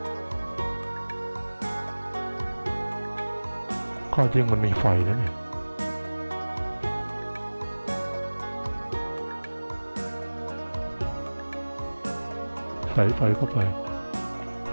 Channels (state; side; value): inverted; both; correlation -1.00